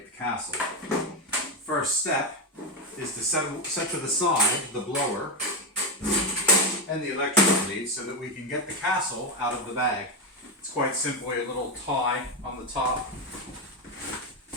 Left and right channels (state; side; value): normal; both; correlation 0.11